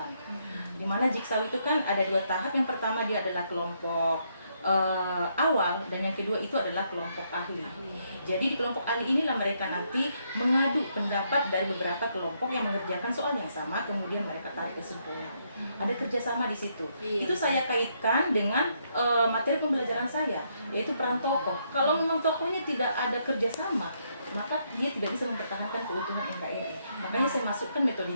Di mana jigsaw itu kan ada 2 tahap. Yang pertama dia adalah kelompok awal dan yang kedua itu adalah kelompok ahli. Jadi di kelompok ahli inilah mereka nanti mengadu pendapat dari beberapa kelompok yang mengerjakan soal yang sama, kemudian mereka tarik kesimpulan. Ada kerjasama di situ. Itu saya kaitkan dengan materi pembelajaran saya, yaitu peran tokoh. Kalau memang tokohnya tidak ada kerjasama, maka dia tidak bisa mempertahankan keutuhan NKRI. Makanya saya masukkan metode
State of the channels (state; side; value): inverted; both; correlation -0.75